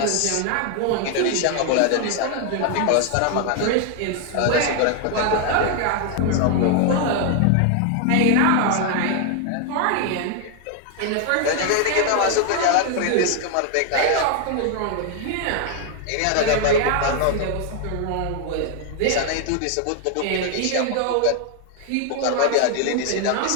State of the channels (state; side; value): different; both; correlation 0.00